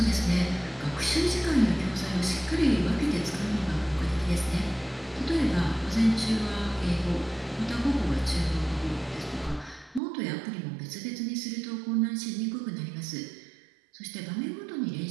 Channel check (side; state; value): left; drops out; at 10.0 s